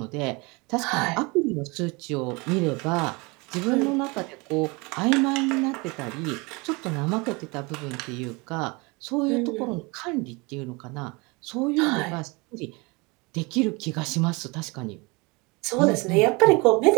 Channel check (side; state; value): left; quieter; 27.1 dB